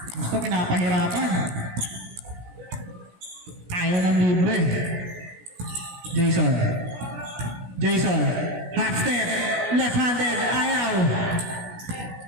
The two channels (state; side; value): late; left; 16 ms